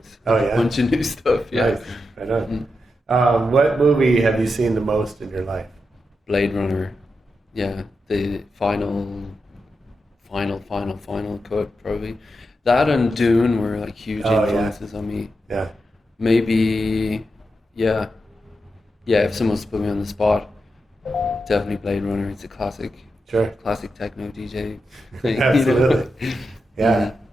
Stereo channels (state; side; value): normal; both; correlation 0.87